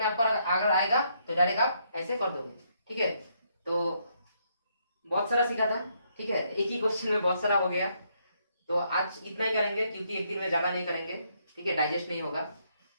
आपका अगर आएगा तो डायरेक्ट आप ऐसे कर दोगे। ठीक है, तो बहुत सारा सीखा था। ठीक है, एक ही क्वेश्चन में बहुत सारा हो गया, तो आज इतना ही करेंगे क्योंकि एक दिन में ज्यादा नहीं करेंगे। ठीक है, डाइजेस्ट नहीं होगा,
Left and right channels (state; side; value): inverted; both; correlation -0.74